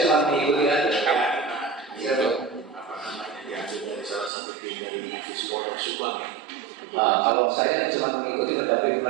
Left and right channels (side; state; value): left; drops out; at 4.3 s